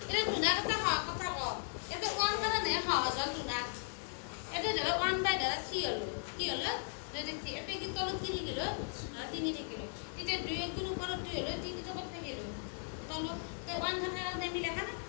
এটা দুনা কথা ক এটা 1 মানে সহজ হল দুনা এটা ধরো 1 বাই ধরো 3 হলো কি হলো যদি এটা কি তলত কি গেল 3 থাকিল এটা 2 গুণ উপর 2 হলো 3 তো কত থাকিল তলত তো 1 থাকার কারণে আমি লেখা না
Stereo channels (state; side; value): silent; right; 53 dB below the other